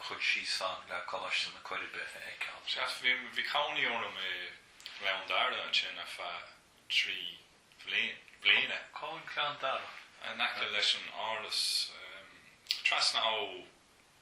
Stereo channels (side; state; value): both; identical; correlation 1.00